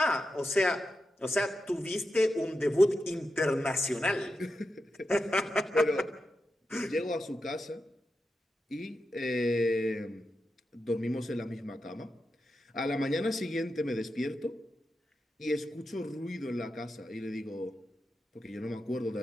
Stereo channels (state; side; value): normal; both; correlation 0.89